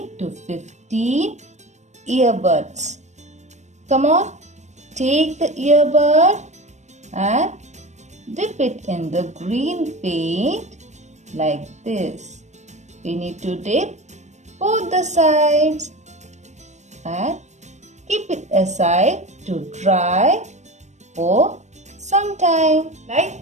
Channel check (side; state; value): left; late; 0.34 ms